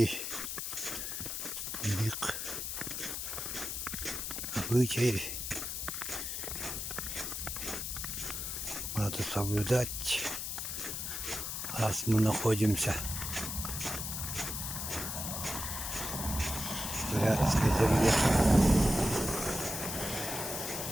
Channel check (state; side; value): noise; left; hiss, 4 dB below the sound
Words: их обычаи. Надо соблюдать, раз мы находимся в Бурятской земле.